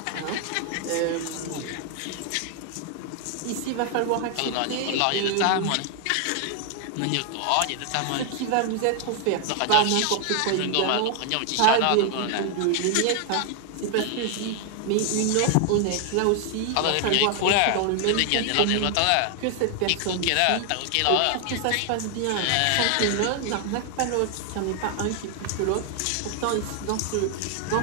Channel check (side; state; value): both; different; correlation 0.00